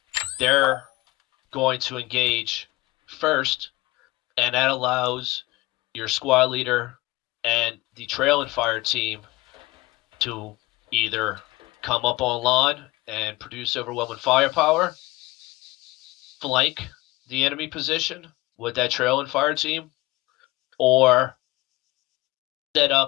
they're going to engage first, and that allows your squad leader and the trailing fire team to either come up online and produce overwhelming firepower, flank the enemy position with that trailing fire team, or set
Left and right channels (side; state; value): right; quieter; 20.4 dB